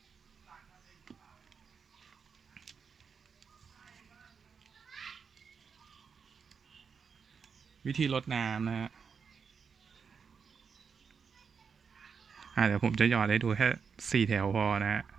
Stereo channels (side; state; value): left; quieter; 6.1 dB